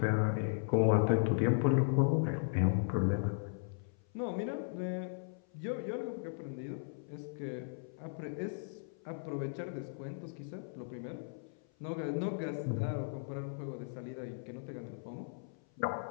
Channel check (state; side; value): silent; right; 53 dB below the other